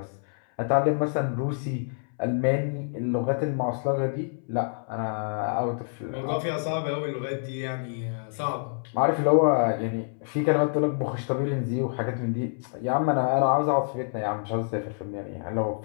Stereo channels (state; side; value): silent; right; 60 dB below the other